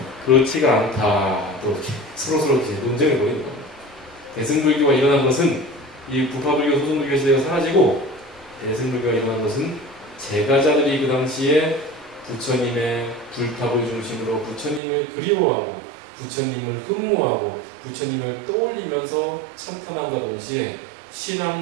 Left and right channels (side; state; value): left; drops out; at 14.8 s